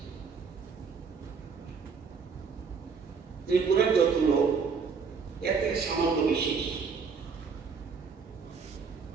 ত্রিপুরার যত লোক এতে সামান্য বিশেষ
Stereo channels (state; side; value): quieter; left; 5.6 dB